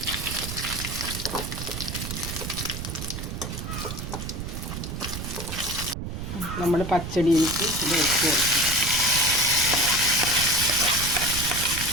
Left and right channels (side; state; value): right; noise; rumble, 6 dB below the sound